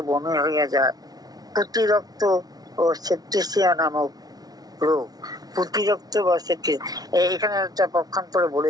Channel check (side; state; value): left; late; 0.19 ms